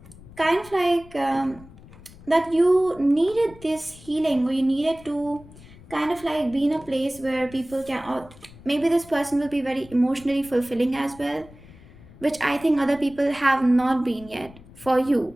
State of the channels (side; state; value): left; noise; rumble, 21 dB below the sound